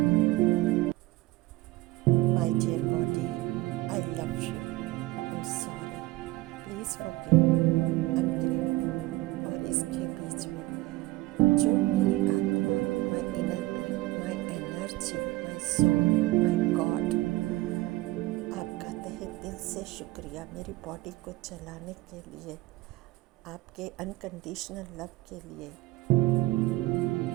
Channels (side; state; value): left; quieter; 18.8 dB